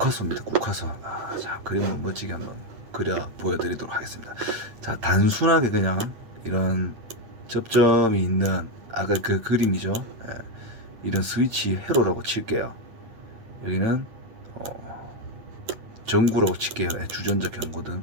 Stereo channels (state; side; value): late; left; 9.0 ms